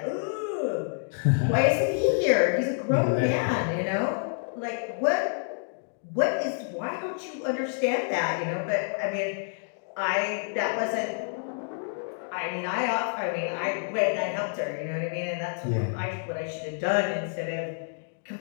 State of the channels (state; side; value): silent; right; digital silence